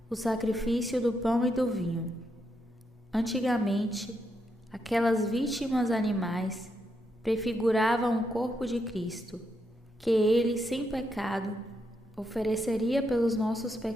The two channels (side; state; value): both; normal; correlation 0.81